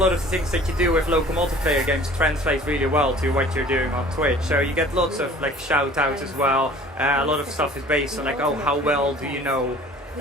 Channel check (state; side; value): normal; both; correlation 0.48